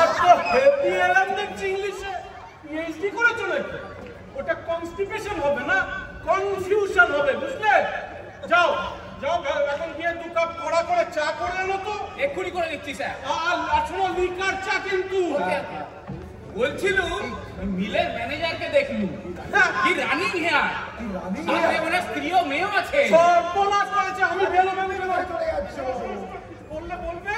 তো হেভি এলাম দেখছি ইংলিশে। পিএইচডি করেছো নাকি? ওটা কনস্টিপেশন হবে না, কনফিউশন হবে, বুঝলে? যাও এখন গিয়ে 2 কাপ কড়া করে চা করে আনো তো। এক্ষুনি করে দিচ্ছি স্যার। আর শোনো, লিকার চা কিন্তু। বলছিল মিলের ম্যানেজারকে দেখলু, কি রানিং হেয়ার, সাথে ওনার স্ত্রীও মেয়েও আছে। সর্বনাশ করেছে। আমি বেলো চলে যাচ্ছি। বলবে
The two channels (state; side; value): identical; both; correlation 1.00